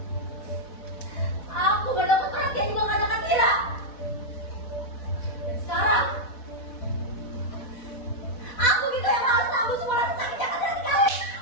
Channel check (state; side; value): late; right; 4.1 ms